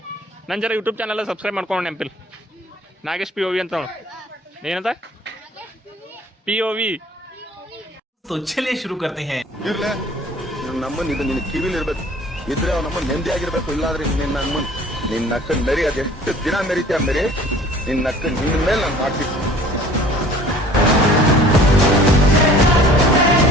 ನನ್ನ ಜರ ಯೂಟ್ಯೂಬ್ ಚಾನಲ್ ಸಬ್ಸ್ಕ್ರೈಬ್ ಮಾಡ್ಕೊಂಡು ನೆಂಪಿಲ್ ನಾಗೇಶ್ POV ಅಂತ ಏನಂತ POV तो चलिए शुरू करते हैं ಇರ್ಲೆ ನಮ್ಮನ್ ಇದು ನಿನ್ನ ಕಿವಿಲಿ ಇರ್ಬೇಕು ಇದ್ರೆ ಅವ್ ನಮ್ಮ ನೆಮ್ಮದಿ ಆಗಿರ್ಬೇಕು ಇಲ್ಲಾಂದ್ರೆ ನಿನ್ನ ನಕ್ಕ ನರಿ ಅದೆಷ್ಟು ದಿನ ಮೆರಿತೀಯ ಮೆರಿ ನಿನ್ನ ನಕ್ಕ ನಿನ್ನ ಮೇಲೆ ನಾನು ಮಾಡ್ತೀನಿ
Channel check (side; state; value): both; normal; correlation 0.50